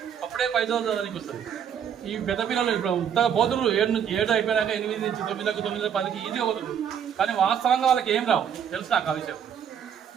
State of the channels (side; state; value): left; quieter; 8.4 dB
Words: అప్పుడే 5వ చదవడానికి వస్తుంది. ఈ పెద్ద పిల్లలు ఇప్పుడు ఉత్తగా పోతున్నారు 7 అయిపోయినాక 8 నుంచి 9లకు 9, 10కి ఈజీగా పోతుంది. కానీ వాస్తవంగా వాళ్ళకి ఏం రావు తెలుసు నాకు ఆ విషయం.